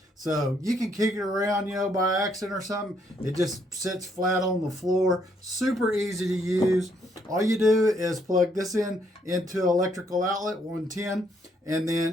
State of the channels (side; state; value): both; normal; correlation 0.71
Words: so you can kick it around, by accident or something. It just sits flat on the floor. Super easy to use. All you do is plug this into electrical outlet 110, and